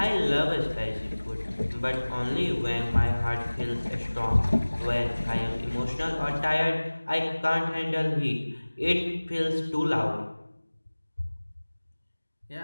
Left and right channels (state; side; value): inverted; both; correlation -1.00